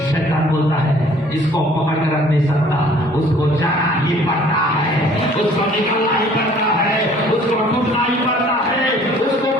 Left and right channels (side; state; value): both; normal; correlation 0.55